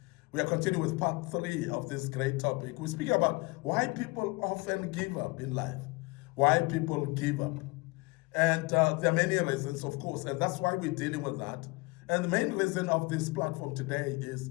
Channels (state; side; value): quieter; right; 24.7 dB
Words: We are continuing with part 3 of this great topic. We're speaking about why people often give up in life, why people give up. And there are many reasons, of course, and that's why we're dealing with that. And the main reason of this platform today is